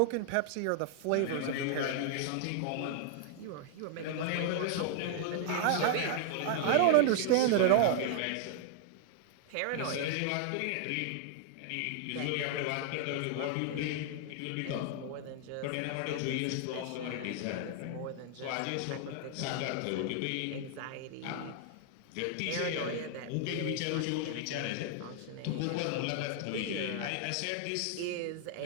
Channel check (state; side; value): different; both; correlation -0.01